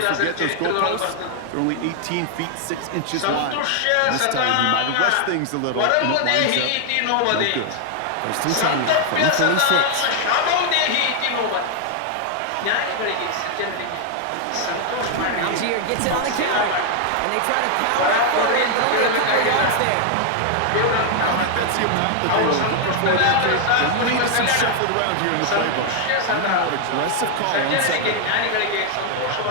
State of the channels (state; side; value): different; both; correlation 0.00